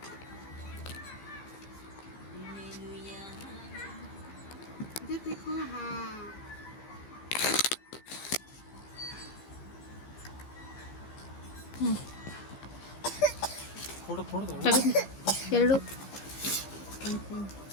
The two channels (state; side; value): late; right; 15 ms